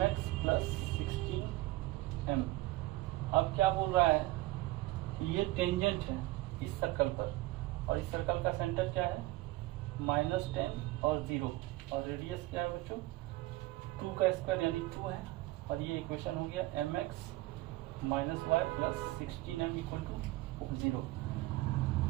प्लस 16m। अब क्या बोल रहा है, ये टेंजेंट है इस सर्कल पर, और इस सर्कल का सेंटर क्या है, -10 और 0, और रेडियस क्या है बच्चों, 2 का स्क्वायर यानी 2 है, और ये इक्वेशन हो गया mx minus y plus 16m equal to 0।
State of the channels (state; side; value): quieter; left; 18.7 dB